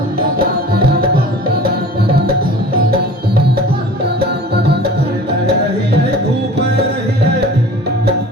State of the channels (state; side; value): normal; both; correlation 0.42